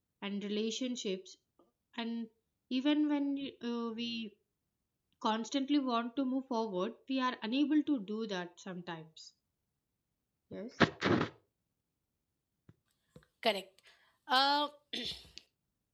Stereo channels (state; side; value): identical; both; correlation 1.00